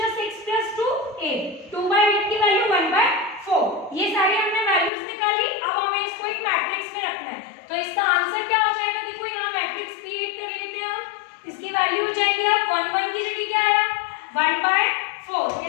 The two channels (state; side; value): drops out; right; at 4.9 s